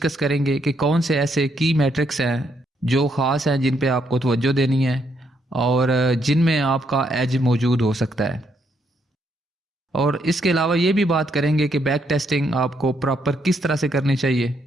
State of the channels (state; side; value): normal; both; correlation 0.75